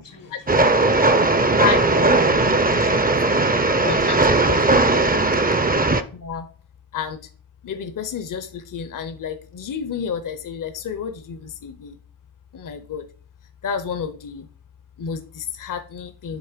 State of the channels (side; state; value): both; normal; correlation 0.15